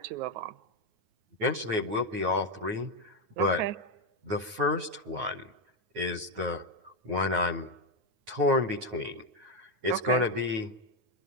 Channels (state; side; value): late; left; 9.4 ms